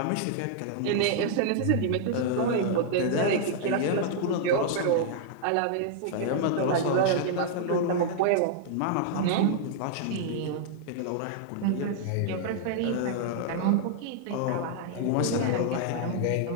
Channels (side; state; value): both; different; correlation -0.01